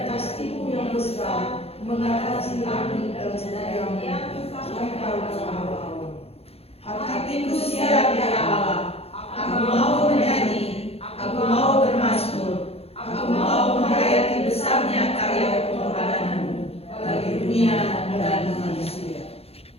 kasih-Mu yang besar mengatasi langit dan sedayanya sampai ke awal. Hatiku siap ya Allah, aku mau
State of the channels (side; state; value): right; late; 0.29 ms